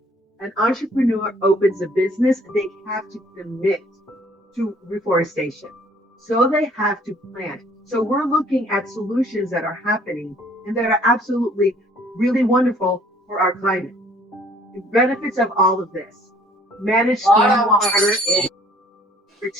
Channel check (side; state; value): both; normal; correlation 0.58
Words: an entrepreneur opens a business, they have to commit to reforestation. So they have to plant. So we're looking at solutions that are happening and that are absolutely really wonderful for our climate. The benefits of all of this: manage stormwater. Number